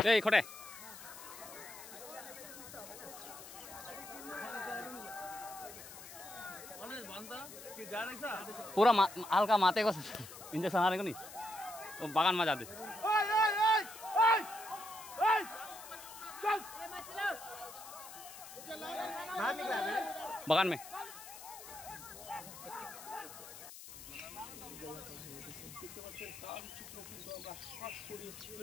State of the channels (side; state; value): left; noise; hiss, 14 dB below the sound